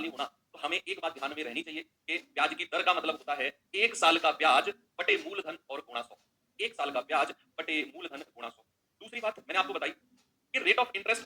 हो ना, तो हमें एक बात ध्यान में रहनी चाहिए कि ब्याज की दर का मतलब होता है एक साल का ब्याज बटे मूलधन और गुणा 100। एक साल का ब्याज बटे मूलधन गुणा 100। दूसरी बात मैंने आपको बताई कि रेट ऑफ इंटरेस्ट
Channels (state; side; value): identical; both; correlation 1.00